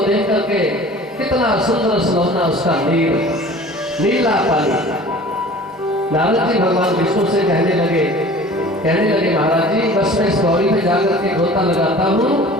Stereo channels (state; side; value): normal; both; correlation 0.44